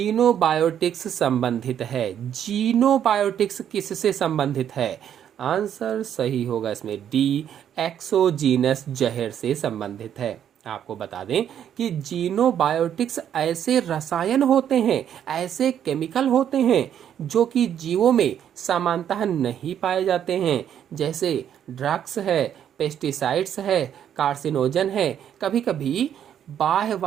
संबंधित है। जीनोबायोटिक्स किससे संबंधित है? आंसर सही होगा इसमें डी, एक्सोजीनस जहर से संबंधित है। आपको बता दें कि जीनोबायोटिक्स ऐसे रसायन होते हैं, ऐसे केमिकल होते हैं जो कि जीवों में समानतः नहीं पाए जाते हैं। जैसे ड्रग्स है, पेस्टिसाइड्स है, कार्सिनोजन है। कभी कभी बाह्य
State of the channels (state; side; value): quieter; left; 9.5 dB